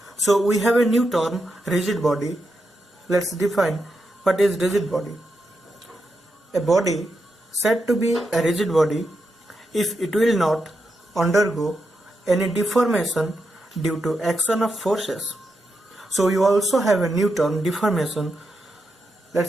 So we have a new term, rigid body. Let's define what is rigid body. A body said to be a rigid body if it will not undergo any deformation due to action of forces. So you also have a new term, deformation.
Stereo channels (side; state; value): both; normal; correlation 0.85